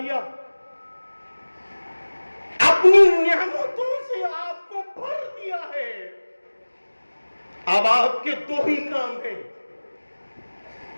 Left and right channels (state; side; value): inverted; both; correlation -1.00